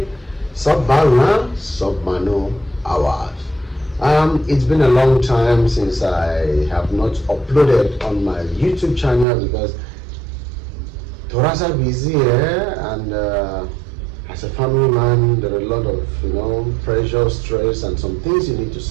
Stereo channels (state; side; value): drops out; left; at 9.2 s